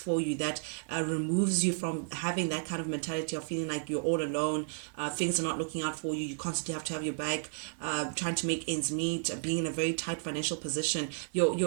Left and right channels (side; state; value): left; silent; 56 dB below the other